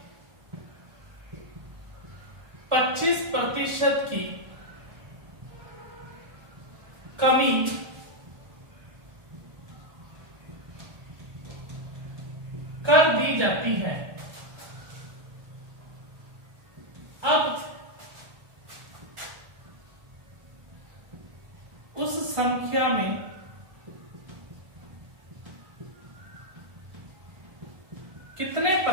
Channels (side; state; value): left; late; 1.4 ms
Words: 25% की कमी कर दी जाती है। अब उस संख्या में कितने